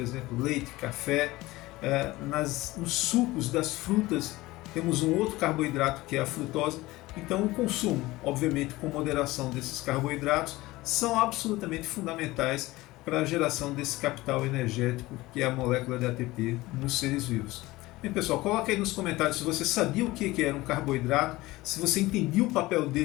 leite, café, nos sucos das frutas temos um outro carboidrato que é a frutose. Então o consumo, obviamente com moderação desses carboidratos, são absolutamente fundamentais para a geração desse capital energético que é a molécula de ATP nos seres vivos. Bem, pessoal, coloca aí nos comentários se você sabia o que era um carboidrato, se você entendia o papel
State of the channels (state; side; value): quieter; right; 19.3 dB